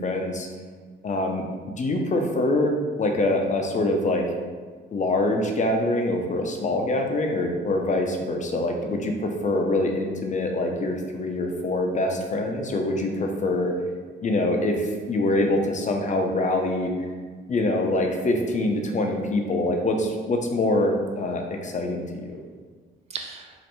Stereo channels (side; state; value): both; normal; correlation 0.47